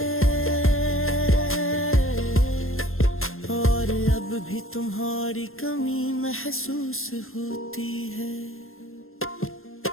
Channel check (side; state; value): right; late; 0.61 ms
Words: और अब भी तुम्हारी कमी महसूस होती है।